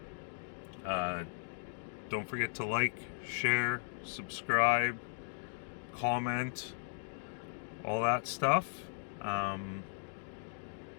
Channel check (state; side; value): silent; right; digital silence